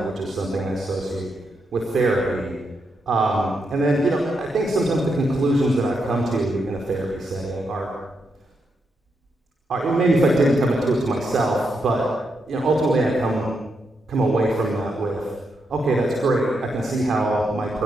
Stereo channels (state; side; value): normal; both; correlation 0.82